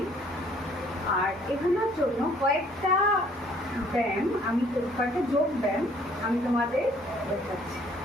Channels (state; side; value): normal; both; correlation 0.60